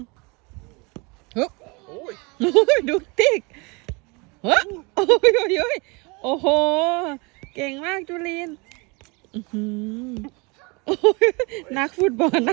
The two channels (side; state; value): left; quieter; 28.5 dB